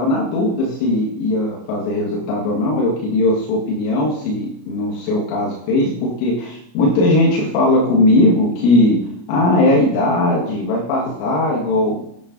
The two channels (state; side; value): late; right; 33 ms